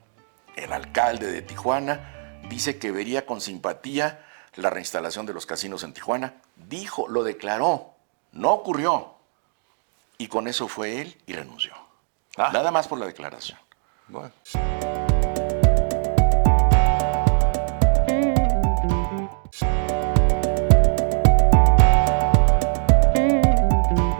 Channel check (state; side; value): silent; left; digital silence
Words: El alcalde de Tijuana dice que vería con simpatía la reinstalación de los casinos en Tijuana. Dijo, lo declaró, no ocurrió. Y con eso fue él y renunció. Nada más por la declaración. Bueno.